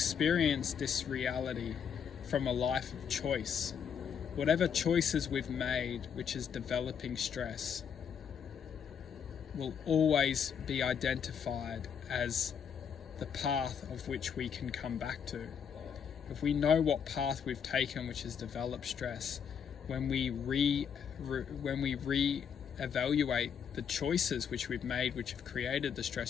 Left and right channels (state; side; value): quieter; right; 7.5 dB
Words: this reality from a life of choice. Whatever choices we've made, which is developing stress, will always be identified as the path of which we can come back to. If we know what path we've taken, which has developed stress, when we re-evaluate the choices which we've made, which have created the